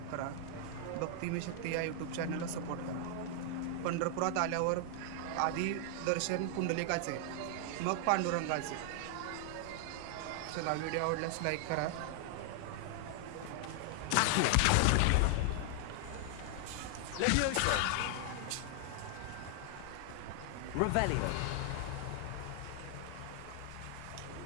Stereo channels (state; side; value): different; both; correlation 0.00